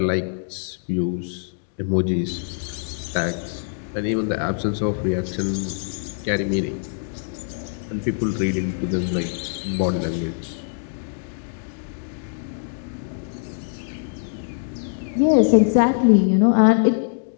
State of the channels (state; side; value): silent; right; digital silence